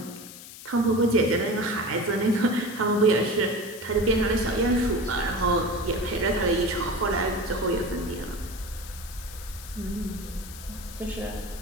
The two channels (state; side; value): noise; left; hiss, 15 dB below the sound